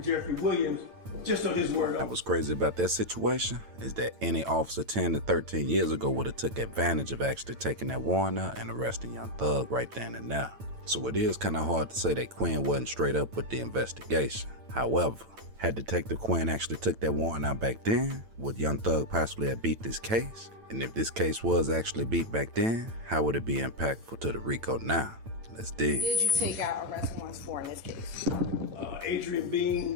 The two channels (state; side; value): late; left; 9.0 ms